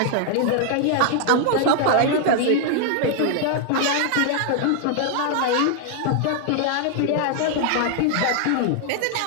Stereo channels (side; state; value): both; different; correlation 0.00